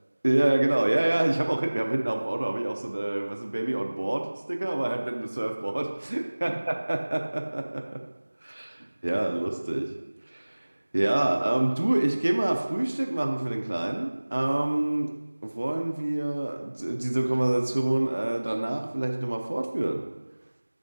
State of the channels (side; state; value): both; inverted; correlation -1.00